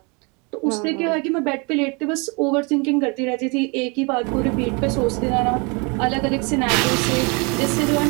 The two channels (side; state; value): left; quieter; 30.9 dB